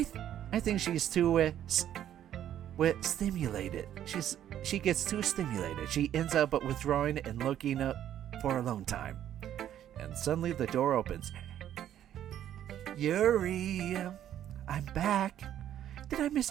think she's too stimulated. She gets too stimulated. She ends up withdrawing and looking up for alone time. And suddenly the door opens. Yuri, I'm back. Did I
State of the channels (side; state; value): left; quieter; 11.0 dB